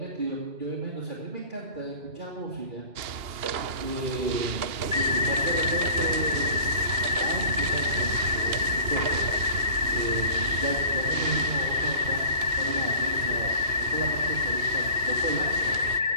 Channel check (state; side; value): late; left; 2.8 ms